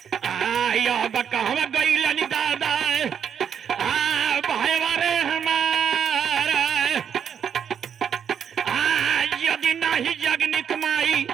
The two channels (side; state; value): left; quieter; 8.0 dB